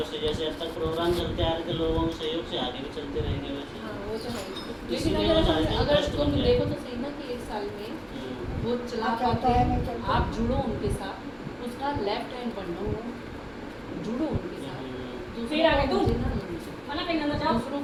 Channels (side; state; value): both; identical; correlation 1.00